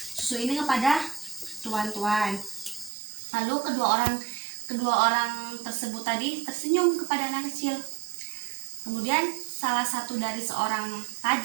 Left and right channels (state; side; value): drops out; left; at 2.9 s